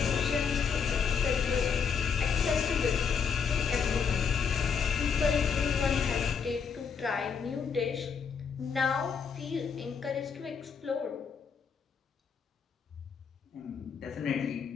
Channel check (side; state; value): right; quieter; 6.3 dB